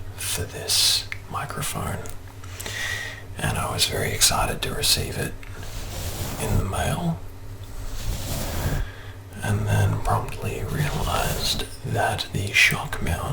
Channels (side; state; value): both; identical; correlation 1.00